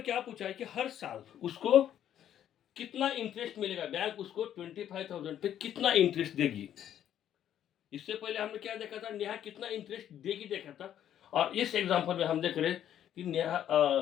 क्या पूछा है कि हर साल उसको कितना इंटरेस्ट मिलेगा, बैंक उसको 25,000 पे कितना इंटरेस्ट देगी। इससे पहले हमने क्या देखा था, नेहा कितना इंटरेस्ट देगी देखा था, और इस एग्जांपल में हम देख रहे हैं कि नेहा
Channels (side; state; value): right; quieter; 10.6 dB